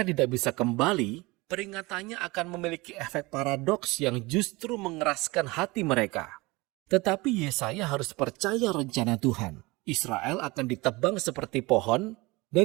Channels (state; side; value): quieter; left; 23.3 dB